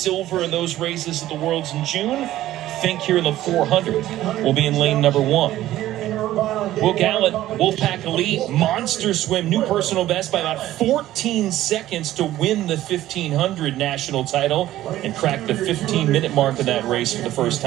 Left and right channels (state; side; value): quieter; left; 14.3 dB